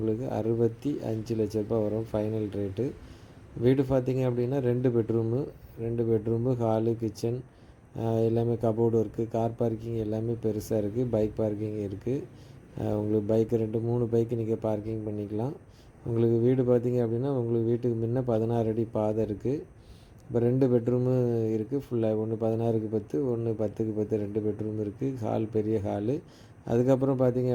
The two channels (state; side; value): identical; both; correlation 1.00